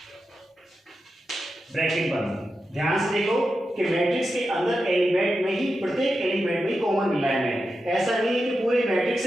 ब्रैकेट बंद। ध्यान से देखो कि मैट्रिक्स के अंदर एलिमेंट में ही, प्रत्येक एलिमेंट में ही कॉमन मिल रहा है हमें, ऐसा नहीं है कि पूरे मैट्रिक्स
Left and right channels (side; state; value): both; normal; correlation 0.89